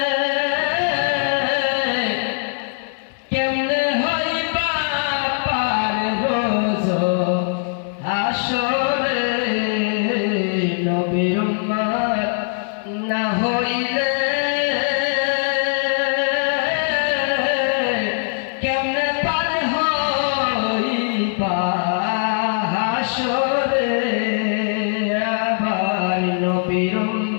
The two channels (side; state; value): right; silent; digital silence